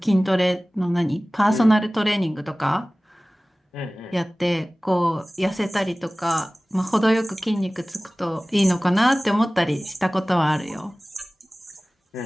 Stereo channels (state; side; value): normal; both; correlation 0.98